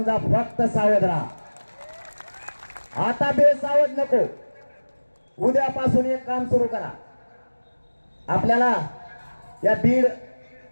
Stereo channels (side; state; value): both; inverted; correlation -1.00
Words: फक्त सावध राहा. आता बेसावध नको. उद्यापासून एक काम सुरू करा. आपल्याला या बीड